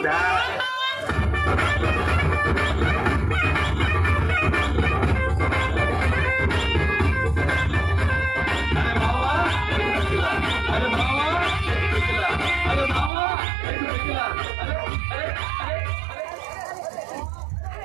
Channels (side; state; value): left; drops out; at 13.1 s